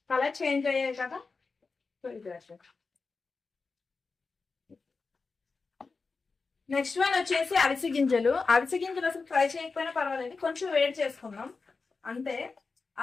కలర్ చేంజ్ అయ్యాయి కదా. నెక్స్ట్ వన్ వచ్చేసి అవిసె గింజలు. అవిసె గింజలు అసలు ఫ్రై చేయకపోయినా పర్వాలేదు, కొంచెం వేడి చేసుకుందాం అంతే.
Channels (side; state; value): right; quieter; 4.4 dB